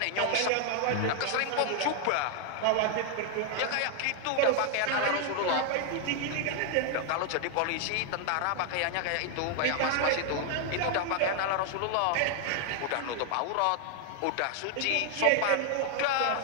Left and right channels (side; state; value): both; different; correlation 0.00